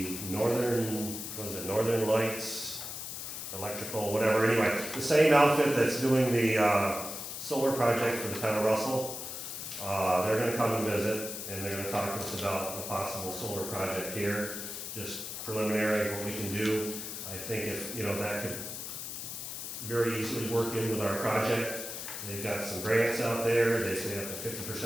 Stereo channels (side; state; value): left; noise; hiss, 7 dB below the sound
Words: Northern Lights, electrical, whatever, anyway, the same outfit that's doing the solar project for the town of Russell, they're gonna come and visit, and they're gonna talk to us about a possible solar project here, just preliminary, what we can do. I think if, you know, that could very easily work in with our project. They've got some grants out there, they say up to